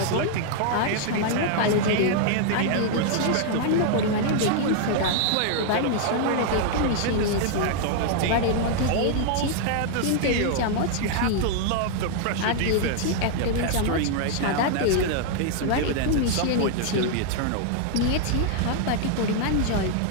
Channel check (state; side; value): different; both; correlation 0.00